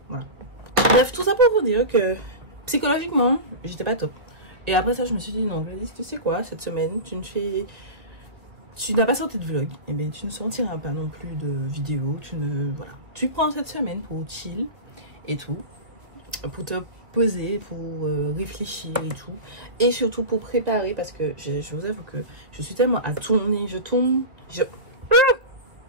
Voilà. Bref, tout ça pour vous dire que psychologiquement, j'étais pas top. Et après ça, je me suis dit, non, Gladys, tu sais quoi, cette semaine, tu n'as pas sorti de vlog, et bien tu ne sortiras pas non plus de vidéo, voilà. Tu prends cette semaine pour chill et tout, pour te poser, pour réfléchir et tout, et surtout pour préparer, parce que je vous avoue que je suis tellement à tourner,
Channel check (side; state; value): left; late; 2.1 ms